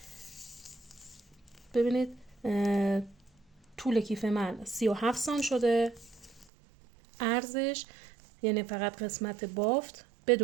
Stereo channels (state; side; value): drops out; left; at 6.5 s